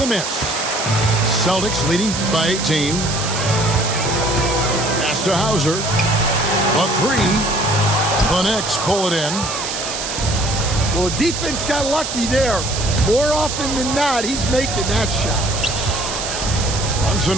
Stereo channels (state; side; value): noise; right; hiss, 5 dB below the sound